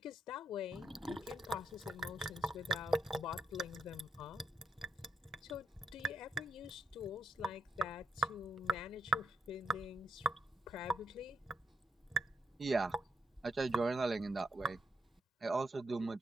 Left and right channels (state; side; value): normal; both; correlation 0.78